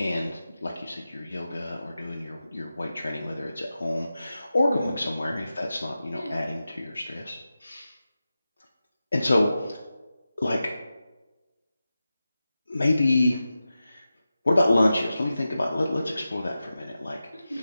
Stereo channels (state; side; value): inverted; both; correlation -0.93